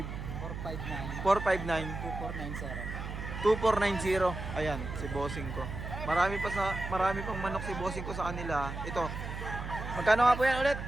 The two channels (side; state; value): right; noise; hum, 7 dB below the sound